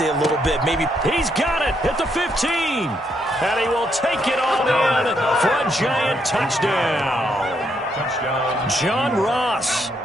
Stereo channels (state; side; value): normal; both; correlation 0.75